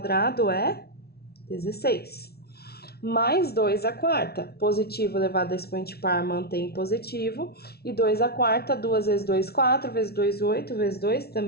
é 16. Mais 2 à quarta, positivo elevado a expoente par mantém positivo. E 2 à quarta, 2 vezes 2, 4, vezes 2, 8, vezes 2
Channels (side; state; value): right; late; 0.45 ms